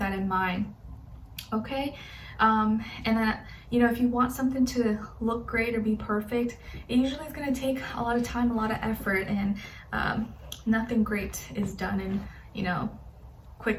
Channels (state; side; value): identical; both; correlation 1.00